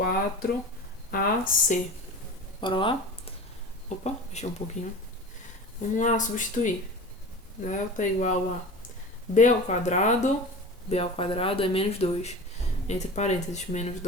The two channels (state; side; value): normal; both; correlation 0.34